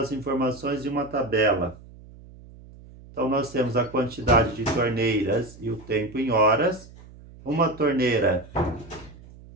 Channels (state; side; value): noise; right; hum, 20 dB below the sound